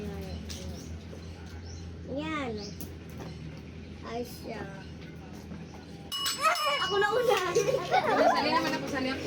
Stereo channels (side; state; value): both; identical; correlation 1.00